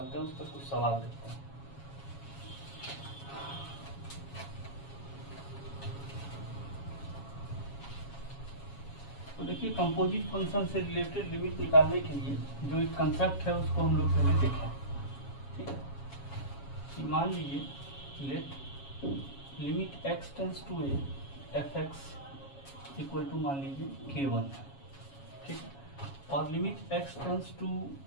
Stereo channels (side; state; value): right; late; 7.3 ms